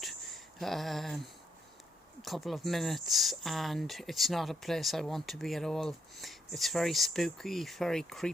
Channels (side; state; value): both; normal; correlation 0.76